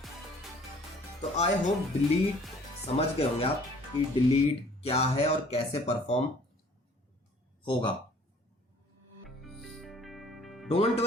तो आई होप डिलीट समझ गए होंगे आप कि डिलीट क्या है और कैसे परफॉर्म होगा। डोंट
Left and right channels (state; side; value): normal; both; correlation 0.55